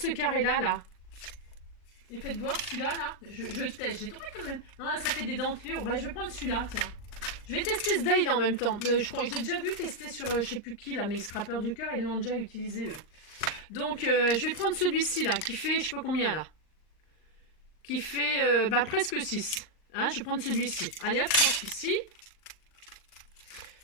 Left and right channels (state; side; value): late; right; 39 ms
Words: carré là, là. Et faites voir celui-là, là. Je teste. J'ai trouvé quand même. Non, là, ça fait des dentelures. Bah, je vais prendre celui-là, tiens. Je vais tester ce die là en même temps. Je crois, je l'ai déjà vu tester sur je sais plus qui là, mais Scrapper du cœur, ils l'ont déjà utilisé eux. Donc je vais prendre celui-ci là, qui fait je sais pas combien là. Qui fait bah, presque 6. Hein, je vais prendre celui-ci. Allez hop, je prends celui-ci.